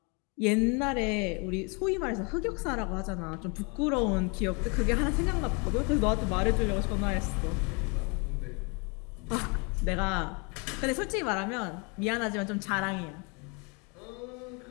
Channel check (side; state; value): right; quieter; 32.4 dB